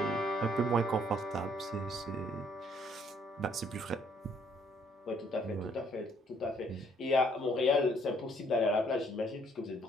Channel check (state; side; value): normal; both; correlation 0.65